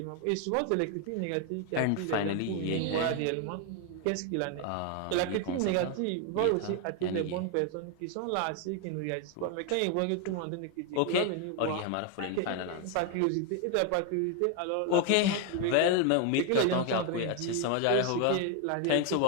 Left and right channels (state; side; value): different; both; correlation 0.01